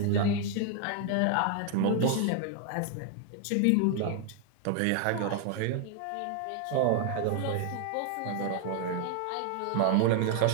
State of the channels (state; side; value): different; both; correlation 0.00